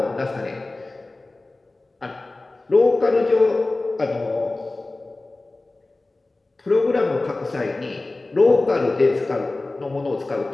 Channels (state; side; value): quieter; right; 3.1 dB